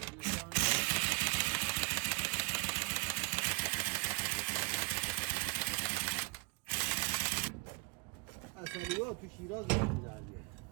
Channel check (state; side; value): quieter; left; 30.8 dB